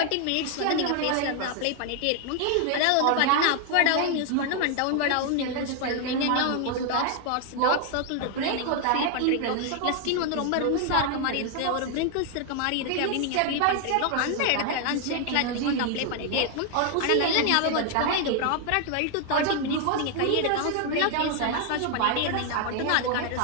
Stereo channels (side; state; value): both; different; correlation 0.00